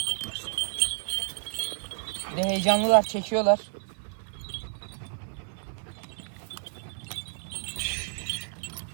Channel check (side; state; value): left; silent; 58 dB below the other